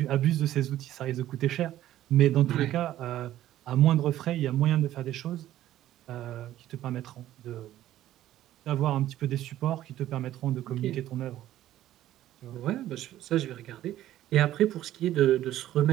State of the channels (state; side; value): quieter; left; 13.3 dB